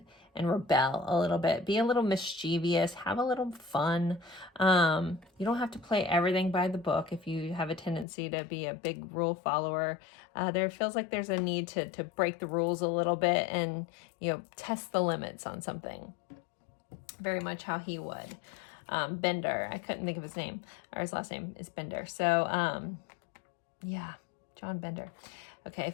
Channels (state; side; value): drops out; right; at 8.1 s